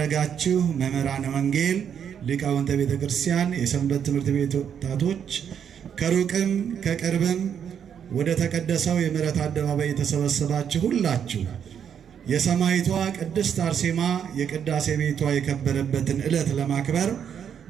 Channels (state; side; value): quieter; left; 8.2 dB